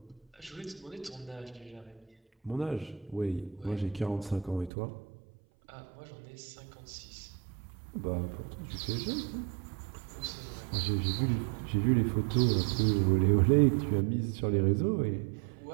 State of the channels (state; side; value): drops out; left; at 4.7 s